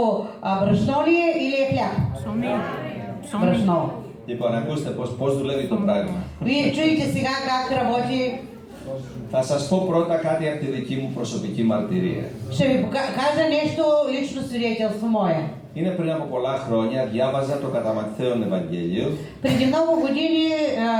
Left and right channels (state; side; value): identical; both; correlation 1.00